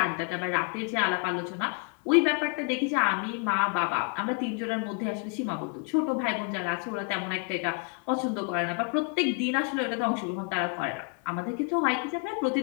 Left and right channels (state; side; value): quieter; right; 36.4 dB